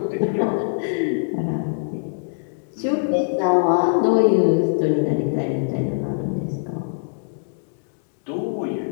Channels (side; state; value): right; silent; digital silence